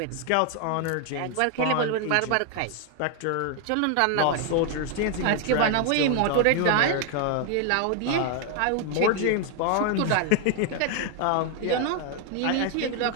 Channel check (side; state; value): both; different; correlation 0.01